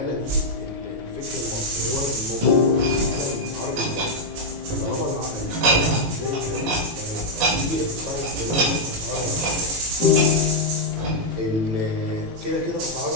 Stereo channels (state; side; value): late; left; 18 ms